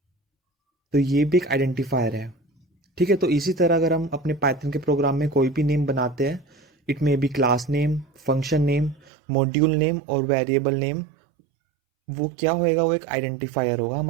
तो ये भी एक आइडेंटिफायर है। ठीक है, तो इसी तरह अगर हम अपने पाइथन के प्रोग्राम में कोई भी नेम बनाते हैं, it may be class name, function name, module name or variable name, वो क्या होएगा? वो एक आइडेंटिफायर होगा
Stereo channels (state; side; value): drops out; left; at 9.1 s